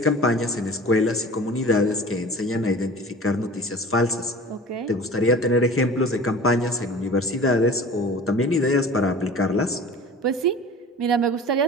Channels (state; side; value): normal; both; correlation 0.40